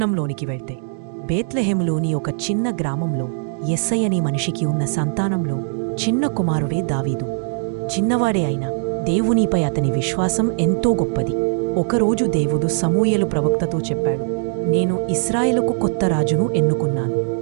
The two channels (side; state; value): left; silent; digital silence